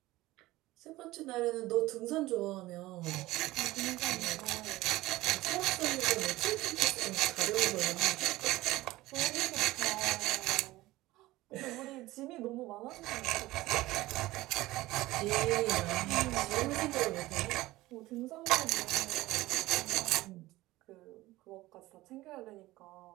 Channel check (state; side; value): quieter; left; 18.0 dB